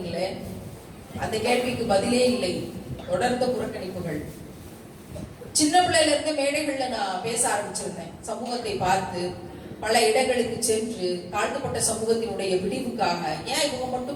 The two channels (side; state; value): both; identical; correlation 1.00